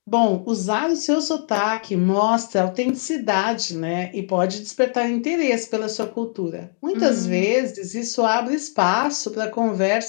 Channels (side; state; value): right; silent; digital silence